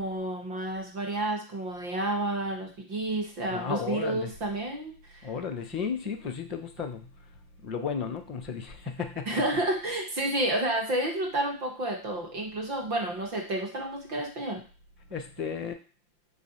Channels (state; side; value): late; left; 5.8 ms